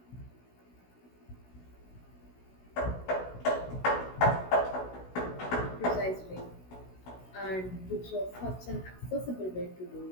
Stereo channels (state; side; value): late; right; 16 ms